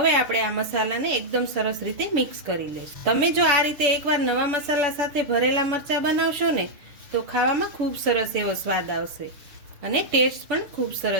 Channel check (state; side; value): late; left; 7.0 ms